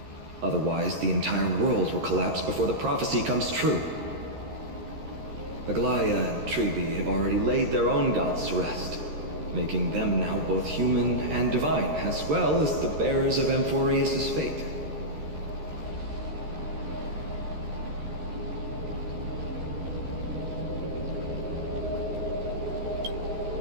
Otherwise, the entire world will collapse before the prophecy comes true. Aglaya and Trevi have already laid their own gods to rest, making them now both human and divine, as well as the bearers of Amphoreus' fate.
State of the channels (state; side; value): late; left; 13 ms